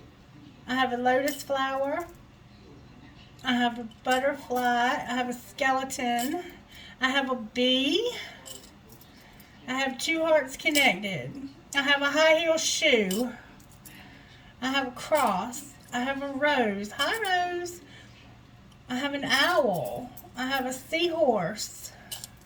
I have a lotus flower. I have a butterfly. I have a skeleton. I have a bee. I have two hearts connected. I have a high heel shoe. I have a cross. I have a rose. Hi, Rose. I have an owl. I have a seahorse.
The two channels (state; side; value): identical; both; correlation 1.00